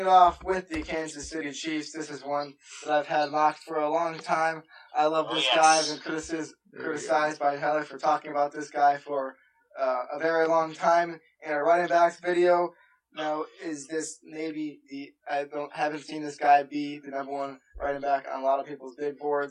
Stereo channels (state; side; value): identical; both; correlation 1.00